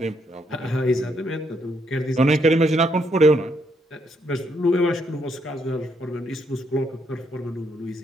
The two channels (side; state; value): both; normal; correlation 0.74